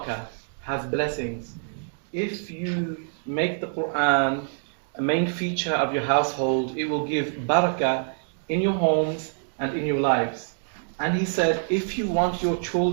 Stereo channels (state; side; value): silent; left; digital silence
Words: has blessings. If you make the Quran a main feature of your household, it will give barakah in your homes and in your lives. And he said, if you want your